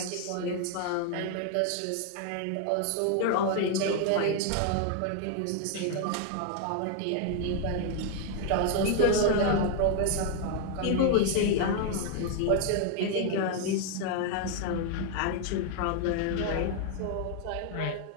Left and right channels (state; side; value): different; both; correlation 0.00